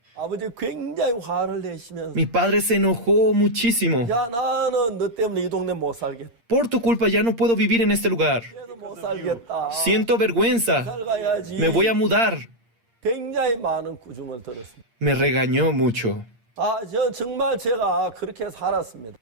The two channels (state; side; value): late; left; 8.6 ms